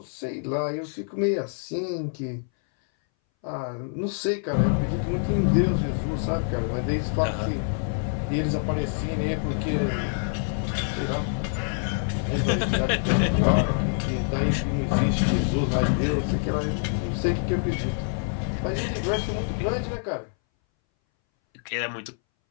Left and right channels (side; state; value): right; silent; 60 dB below the other